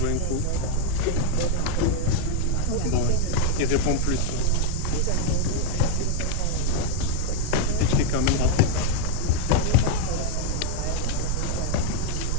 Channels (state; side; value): different; both; correlation 0.01